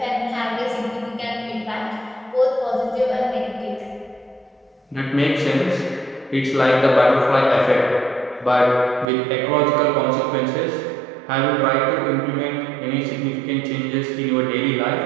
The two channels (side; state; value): left; drops out; at 9.1 s